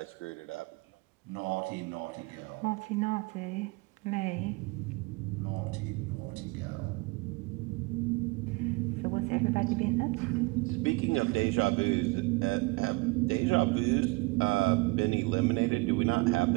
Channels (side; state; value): left; quieter; 25.0 dB